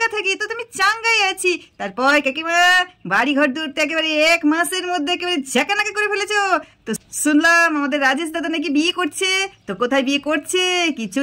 থাকি, তো তুমি চাঙ্গাই আছি। তারপর কাকিমা, বাড়ি ঘর দূরতে একেবারে 1 মাসের মধ্যে একেবারে ঝাঁকানাকা করে ফেলেছো। তো শুনলাম আমাদের রাজেশ দাদা নাকি বিয়ে করছে, তো কোথায় বিয়ে করছে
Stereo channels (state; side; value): identical; both; correlation 1.00